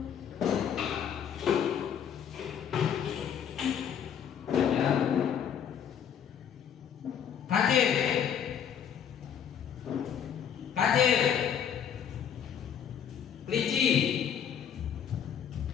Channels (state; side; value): quieter; right; 8.5 dB